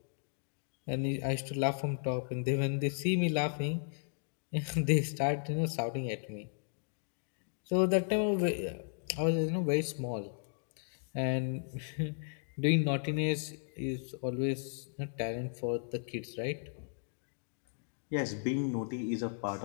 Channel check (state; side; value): silent; right; digital silence